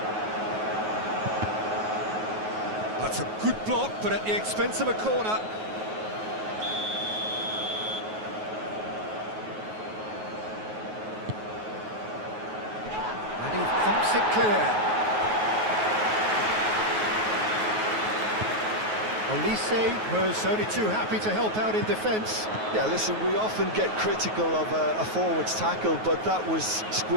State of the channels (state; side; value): late; left; 9.4 ms